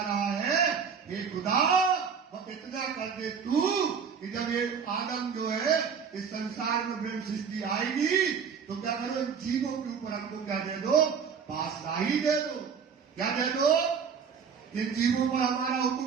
रहा है, हे खुदा वो इतना कर दे तू कि जब ये आदम जो है इस संसार में ब्रह्म सृष्टि आएगी तो क्या करो, इन जीवों के ऊपर हमको क्या दे दो? पातशाही दे दो। क्या दे दो? इन जीवों पर हमारा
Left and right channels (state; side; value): quieter; left; 6.5 dB